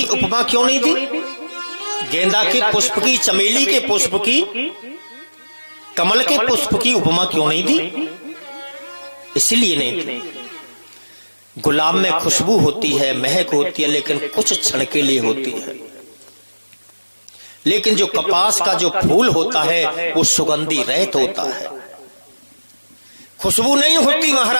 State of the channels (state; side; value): inverted; both; correlation -1.00